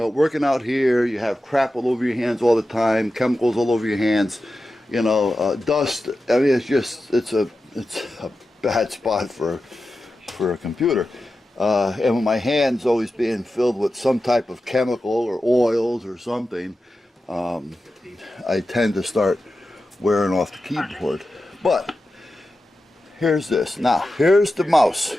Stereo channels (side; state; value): both; normal; correlation 0.92